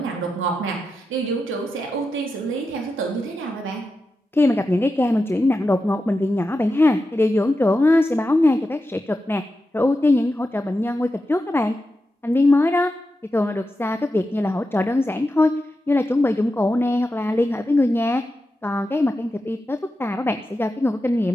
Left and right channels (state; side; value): normal; both; correlation 0.90